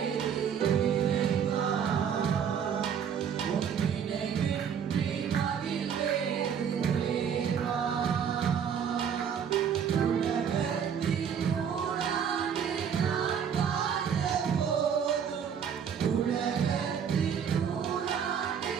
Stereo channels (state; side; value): quieter; left; 7.7 dB